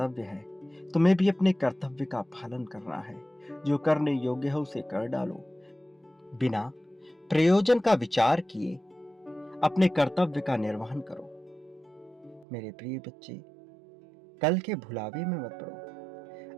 है। तुम्हें भी अपने कर्तव्य का पालन करना है। जो करने योग्य है उसे कर डालो। बिना प्रयोजन का विचार किए अपने कर्तव्य का निर्वहन करो। मेरे प्रिय बच्चे, कल के भुलावे में मत पड़ो।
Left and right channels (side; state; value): left; drops out; at 12.5 s